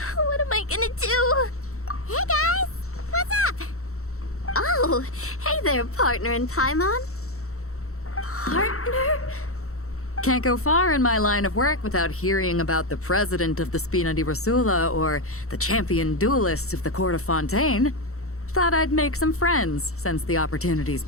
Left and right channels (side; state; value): right; late; 0.64 ms